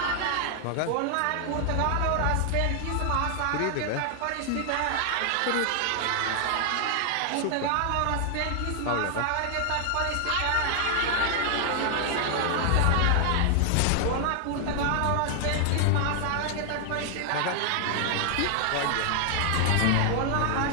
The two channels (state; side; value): different; both; correlation 0.00